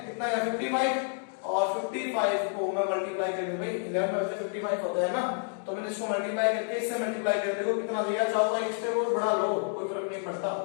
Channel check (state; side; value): silent; right; 58 dB below the other